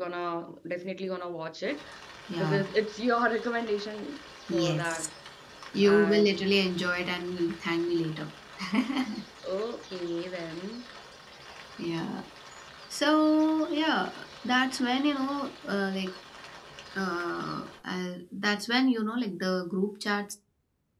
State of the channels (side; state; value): both; identical; correlation 1.00